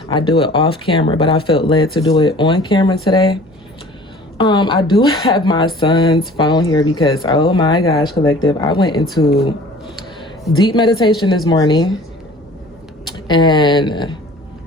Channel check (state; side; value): normal; both; correlation 0.47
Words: I do it off camera, but I felt led to do it on camera today. I do have my son's phone here because, oh my gosh, collective, I went into deep meditation this morning, and